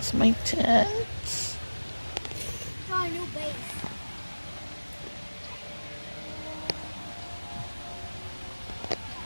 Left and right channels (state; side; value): inverted; both; correlation -1.00